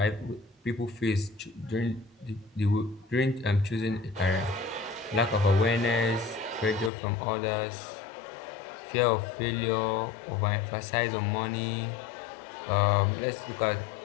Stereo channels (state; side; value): drops out; right; at 6.9 s